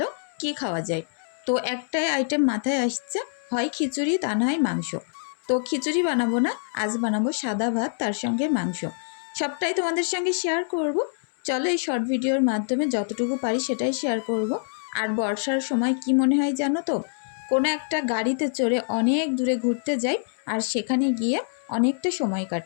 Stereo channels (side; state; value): right; silent; 61 dB below the other